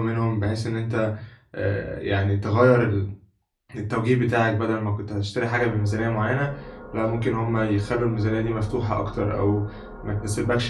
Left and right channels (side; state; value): both; identical; correlation 1.00